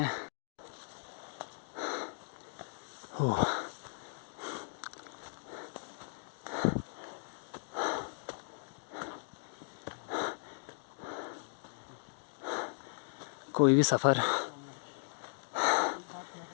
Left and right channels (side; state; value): right; silent; digital silence